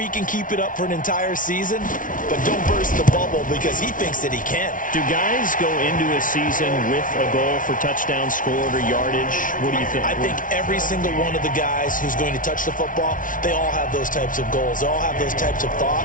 can keep it up for an entire season, but don't burst the bubble because he thinks that he can. Do guys go into a season with a goal for touchdown scored or yardage? What do you think? I think every single one of the guys who's going to touch the football, they all have those types of goals. They all have those types of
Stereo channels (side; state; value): right; late; 0.38 ms